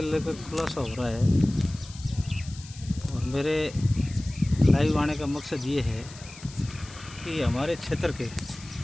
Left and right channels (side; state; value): left; noise; hiss, 18 dB below the sound